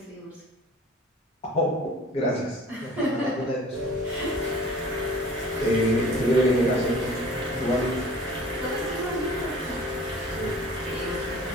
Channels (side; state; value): both; normal; correlation 0.46